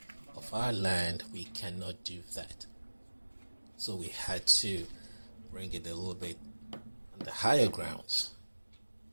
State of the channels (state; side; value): inverted; both; correlation -1.00